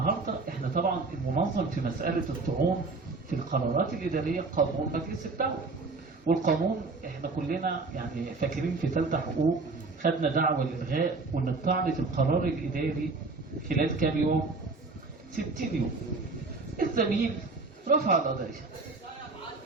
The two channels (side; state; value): left; quieter; 3.8 dB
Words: احنا طبعا المنظم في مسألة الطعون في القرارات الإدارية قانون مجلس الدولة، والقانون احنا كلنا يعني فاكرين في ثالثة حقوق خدنا دعوة للغاء وان الطعن في القرار الإداري خلال كام يوم؟ 60 يوم. الزميل رفع القضية